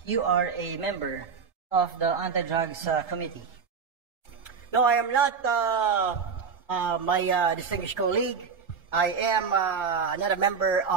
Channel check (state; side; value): quieter; left; 5.9 dB